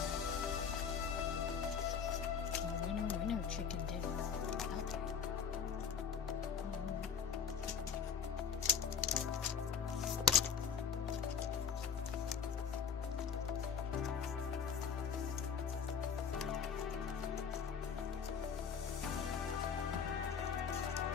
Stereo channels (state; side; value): quieter; right; 6.6 dB